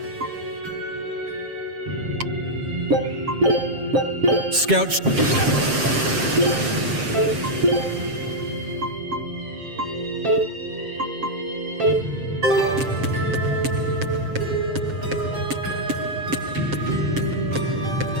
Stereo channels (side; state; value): left; late; 7.5 ms